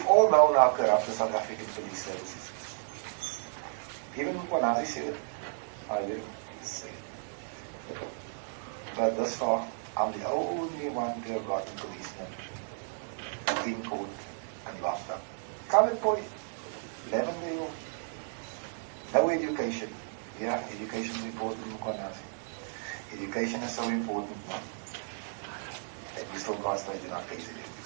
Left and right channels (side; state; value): left; silent; digital silence